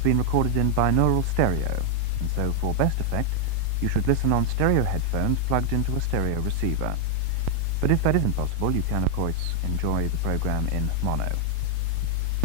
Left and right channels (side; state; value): both; different; correlation 0.00